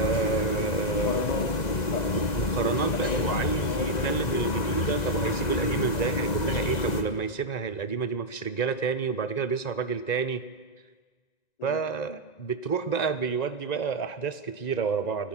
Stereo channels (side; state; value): right; late; 1.9 ms